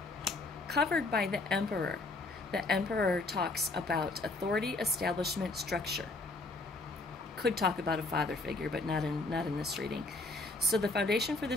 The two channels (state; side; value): quieter; right; 3.1 dB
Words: Covered by the Emperor. The Emperor talks about authority, establishment, structure. Could talk about a father figure, but not in this reading. So the foundation for